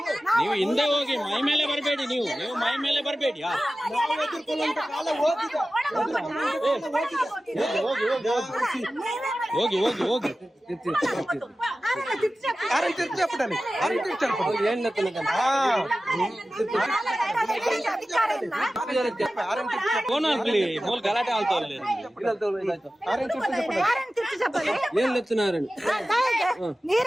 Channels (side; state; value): both; normal; correlation 0.95